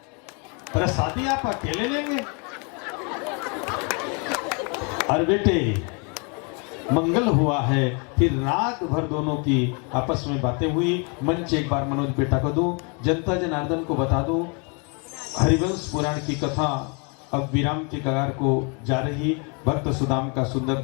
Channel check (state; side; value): quieter; right; 34.7 dB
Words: प्रसादी आप अकेले लेंगे। और बेटे मंगल हुआ है। फिर रात भर दोनों की आपस में बातें हुई। मंच एक बार मनोज बेटा को दूं, जनता जनार्दन को बता दूं, हरिवंश पुराण की कथा अब विराम के कगार को जा रही। भक्त सुदाम का सुंदर